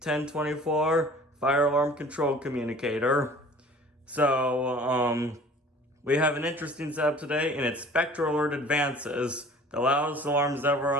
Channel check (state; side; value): normal; both; correlation 0.47